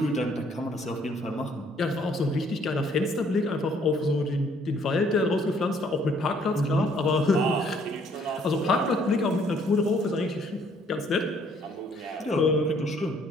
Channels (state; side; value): normal; both; correlation 0.63